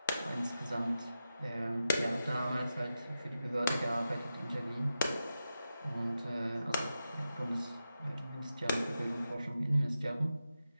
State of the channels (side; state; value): both; inverted; correlation -0.90